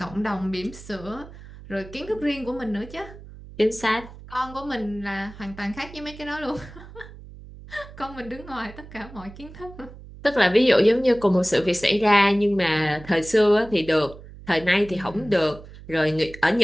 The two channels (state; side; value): noise; right; hum, 17 dB below the sound